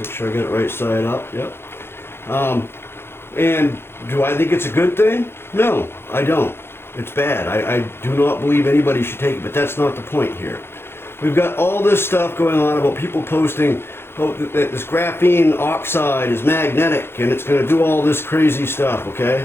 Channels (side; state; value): right; late; 0.11 ms